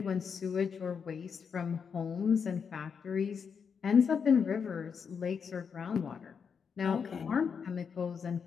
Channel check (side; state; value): right; quieter; 6.4 dB